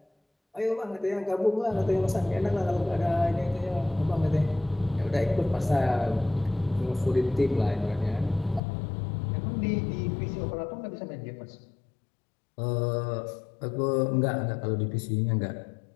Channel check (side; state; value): right; drops out; at 8.6 s